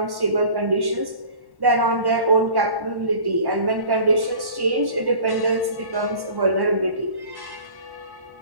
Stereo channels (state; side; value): late; left; 1.1 ms